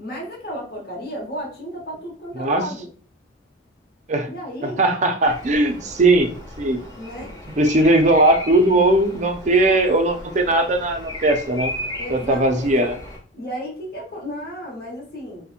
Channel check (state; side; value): normal; both; correlation 0.27